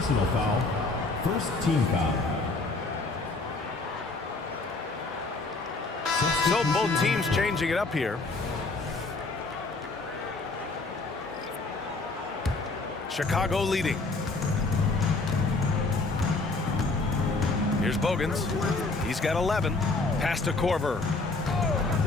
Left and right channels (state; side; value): quieter; right; 3.4 dB